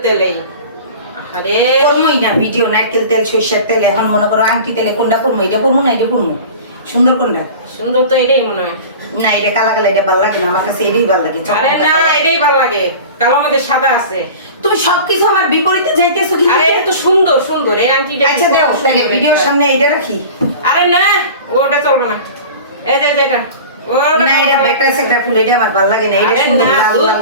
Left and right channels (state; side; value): inverted; both; correlation -0.37